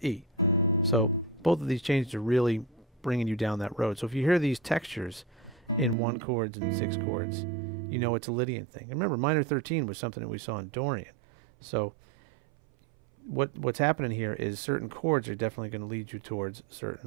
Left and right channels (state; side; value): drops out; left; at 6.0 s